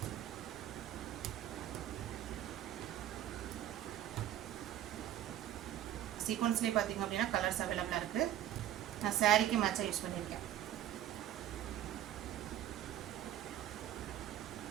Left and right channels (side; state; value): left; quieter; 11.9 dB